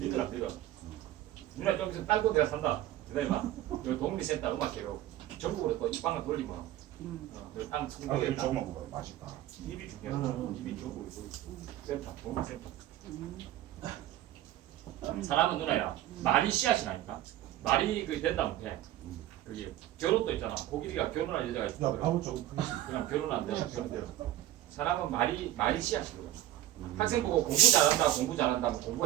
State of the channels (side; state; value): left; quieter; 13.9 dB